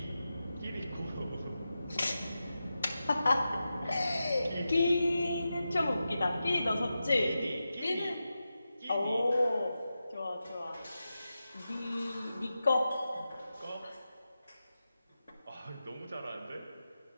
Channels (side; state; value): both; inverted; correlation -0.91